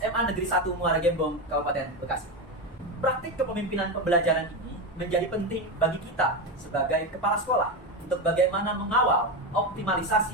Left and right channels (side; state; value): both; normal; correlation 0.15